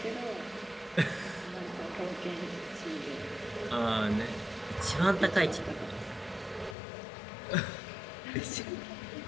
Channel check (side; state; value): right; drops out; at 6.8 s